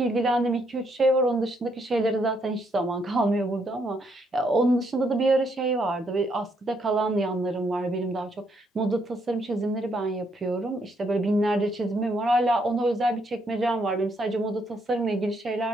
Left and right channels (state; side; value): normal; both; correlation 0.74